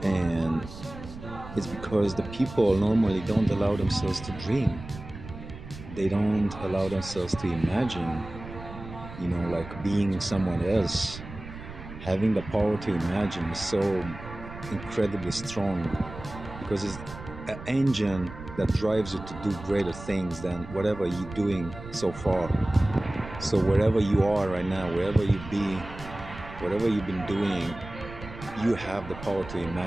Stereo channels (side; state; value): right; noise; rumble, 13 dB below the sound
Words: And it's because the people normally don't allow themselves to dream. They don't allow themselves to imagine, like being someone else. Having the power to imagine is so incredibly strong, because it's an engine that drives you to do greater things than whatever you're doing so far. So wherever you are right now, wherever you be, whatever you've been doing, you have the power to